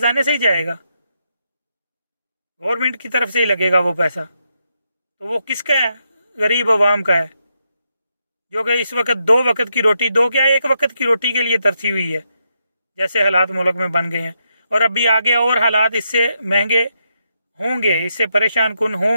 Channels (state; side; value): inverted; both; correlation -0.81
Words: से ही जाएगा, गवर्नमेंट की तरफ से ही लगेगा वो पैसा। तो वो किसका है, गरीब आवाम का है, जो कि इस वक्त 2 वक्त की रोटी, दो क्या 1 वक्त की रोटी के लिए तरसी हुई है, जैसे हालात मुल्क में बन गए हैं। और अभी आगे और हालात इससे महंगे होंगे, इससे परेशान कुन